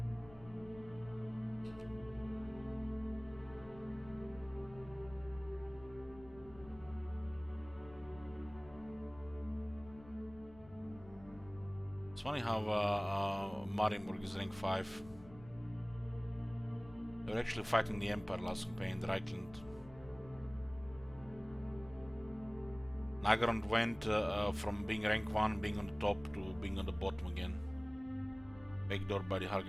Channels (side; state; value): left; noise; rumble, 20 dB below the sound